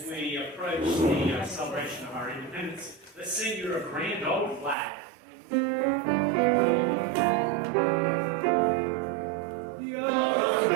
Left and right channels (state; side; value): drops out; left; at 4.8 s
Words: we approach the celebration of our independence, let's sing your grand old flag.